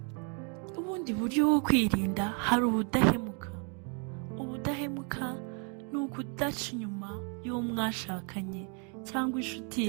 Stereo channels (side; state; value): left; quieter; 37.9 dB